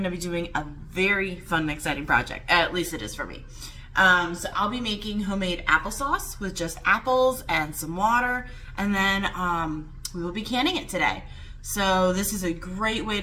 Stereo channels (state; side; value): identical; both; correlation 1.00